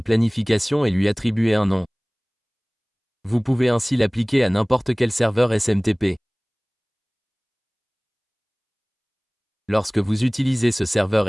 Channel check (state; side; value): identical; both; correlation 1.00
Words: planification et lui attribuer un nom. Vous pouvez ainsi l'appliquer à n'importe quel serveur SMTP. Lorsque vous utilisez ce serveur